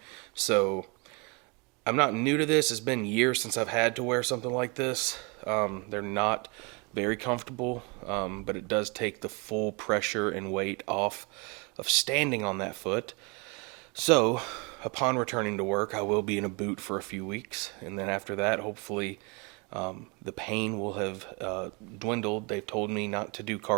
So I'm not new to this. It's been years since I've had to wear something like this. They're not very comfortable, but it does take the full pressure and weight off of standing on that foot. So upon returning to work, I will be in a boot for a few weeks, and then after that, hopefully, the pain will have dwindled. They've told me not to do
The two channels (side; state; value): left; quieter; 30.7 dB